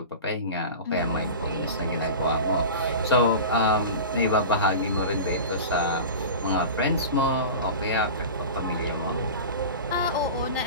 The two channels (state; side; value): inverted; both; correlation -0.32